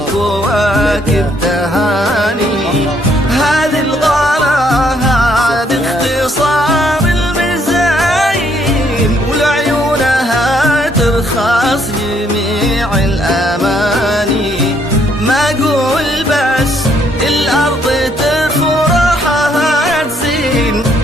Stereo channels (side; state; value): both; normal; correlation 0.69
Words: تهاني. هذه الغلا هذه اختصار المزايين، ولعيونها ترخص جميع الأماني، ما أقول بس الأرض تفرحها تزين،